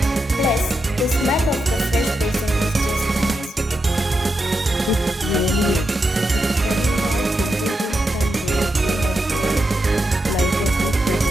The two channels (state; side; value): normal; both; correlation 0.86